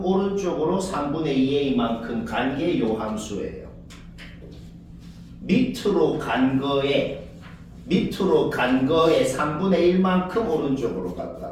오른쪽으로 3분의 2a만큼 간 게 요 함수예요. 밑으로 간 거에 3분의 1만큼 오른쪽으로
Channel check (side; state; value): both; identical; correlation 1.00